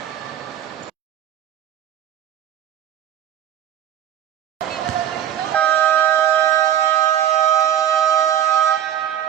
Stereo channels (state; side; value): quieter; left; 10.8 dB